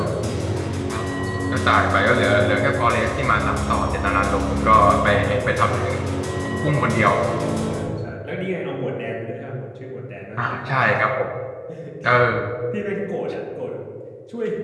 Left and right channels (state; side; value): identical; both; correlation 1.00